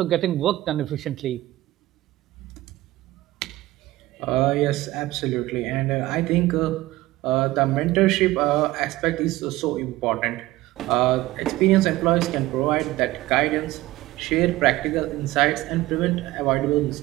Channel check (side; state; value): left; quieter; 17.5 dB